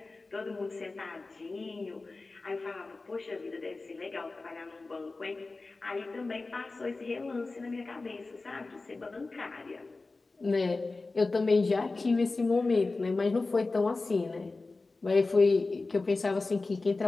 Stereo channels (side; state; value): right; quieter; 3.5 dB